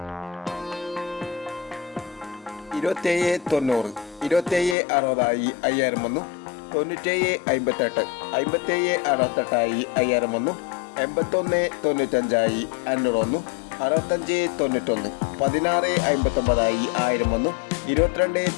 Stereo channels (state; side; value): drops out; right; at 4.8 s